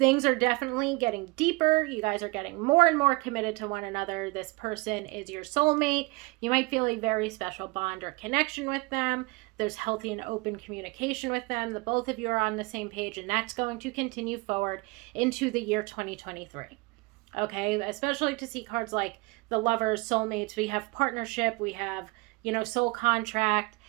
are definitely getting deeper. You guys are getting more and more committed to one another. This person is your soulmate. You might feel a very special bond or connection with them. There's healthy and open communication with them. The both of you are on the same page, and that's going to continue forward into the year 2023. Okay, especially to see cards like the Lovers, Soulmates. We have partnership. We have, soul contract,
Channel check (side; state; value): left; quieter; 25.5 dB